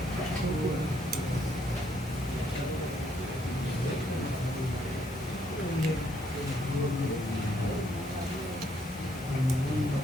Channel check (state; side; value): normal; both; correlation 0.71